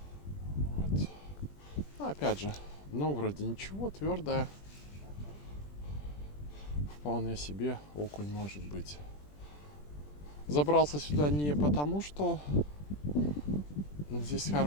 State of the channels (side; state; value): right; late; 20 ms